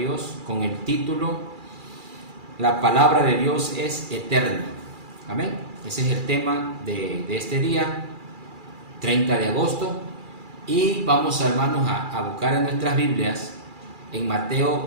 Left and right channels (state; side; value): late; left; 2.4 ms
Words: con el título La palabra de Dios es eterna. Amén. Ese es el tema de este día, 30 de agosto. Y vamos, hermanos, a buscar en nuestras Biblias en